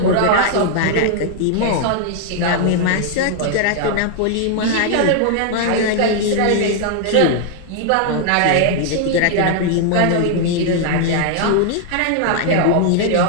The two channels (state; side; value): different; both; correlation 0.00